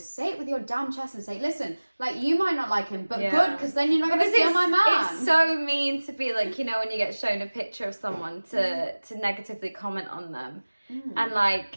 it with your damn chest and say, listen, like, you might not like him, but good, because then you're not going to steal my man. It's so mean to be like, you know, when you get shown a picture of someone to negatively comment on them. And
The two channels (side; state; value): both; inverted; correlation -1.00